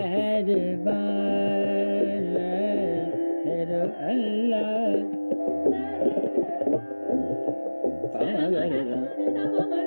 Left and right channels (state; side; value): inverted; both; correlation -1.00